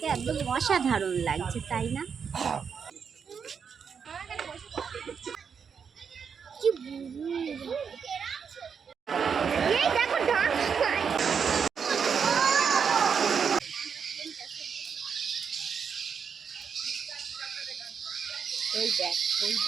একদম অসাধারণ লাগছে, তাই না?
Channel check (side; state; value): left; quieter; 6.6 dB